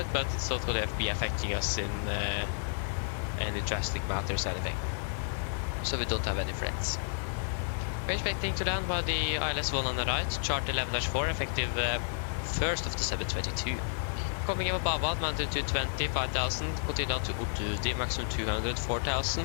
but it's not going to be affecting us in any drastic matters or anything. So we don't have any threats. We're expecting to land by the ILS-1 on the right, chart 11-4, effective 1st of December 2022. Coming over Babad, mounted to 20, 5,000, continue down to Utudi, maximum 200,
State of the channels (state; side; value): silent; right; 57 dB below the other